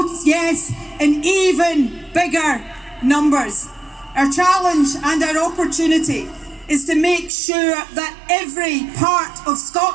yes in even bigger numbers. Our challenge and our opportunity is to make sure that every part of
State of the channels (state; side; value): drops out; left; at 7.3 s